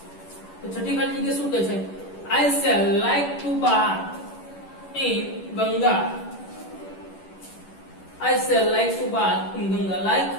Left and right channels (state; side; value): late; right; 11 ms